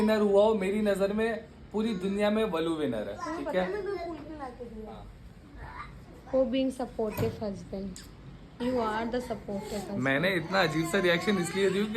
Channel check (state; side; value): identical; both; correlation 1.00